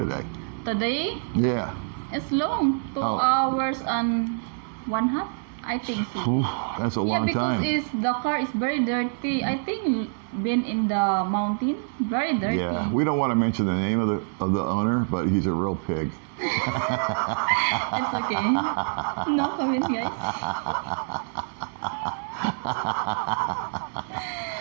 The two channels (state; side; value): silent; left; digital silence